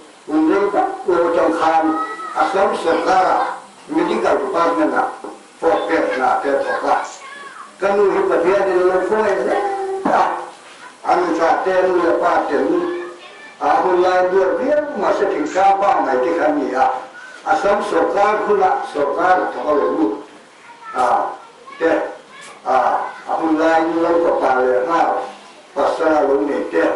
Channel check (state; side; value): identical; both; correlation 1.00